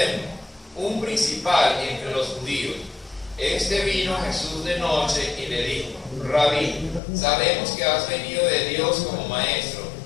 un principal entre los judíos. Este vino a Jesús de noche y le dijo: Rabí, sabemos que has venido de Dios como maestro,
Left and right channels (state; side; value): drops out; right; at 7.0 s